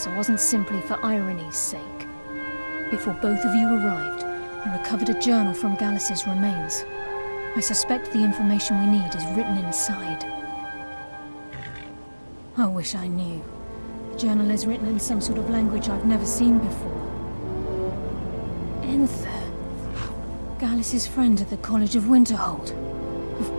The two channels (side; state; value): both; inverted; correlation -1.00